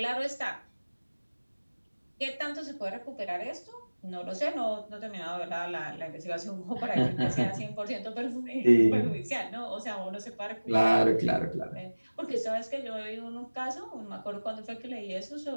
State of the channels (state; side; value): inverted; both; correlation -1.00